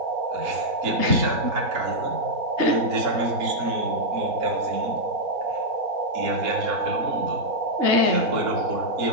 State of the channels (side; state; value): left; late; 4.3 ms